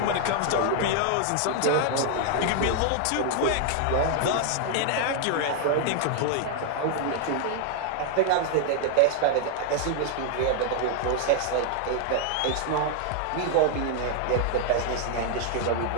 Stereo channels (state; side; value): different; both; correlation 0.00